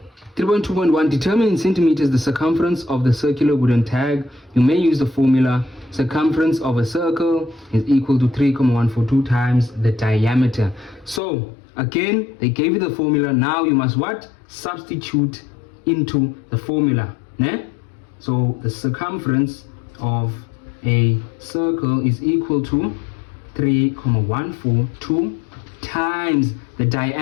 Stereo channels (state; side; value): drops out; right; at 11.2 s